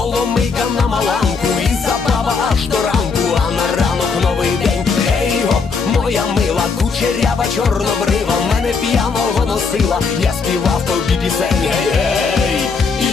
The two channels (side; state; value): right; quieter; 5.0 dB